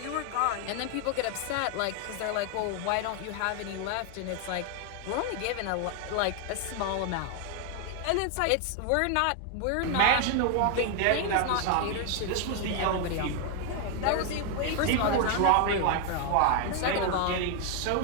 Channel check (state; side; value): different; both; correlation 0.01